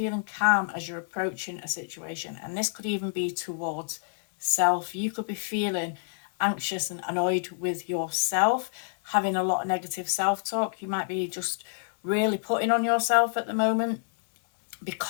calm as you're approaching a situation, and this could even be towards self. You could be feeling anxious and annoyed with yourself, having a lot of negative self-talk. You might be just really putting on yourself at the moment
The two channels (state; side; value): silent; right; digital silence